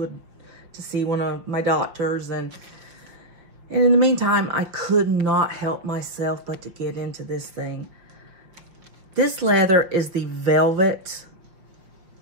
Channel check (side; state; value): left; late; 5.7 ms